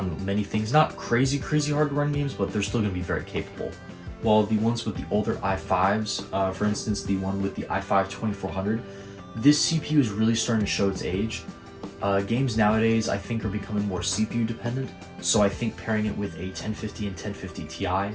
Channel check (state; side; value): identical; both; correlation 1.00